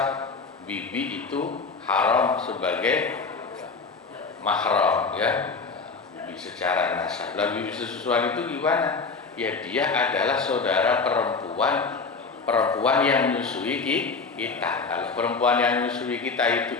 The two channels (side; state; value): right; quieter; 4.5 dB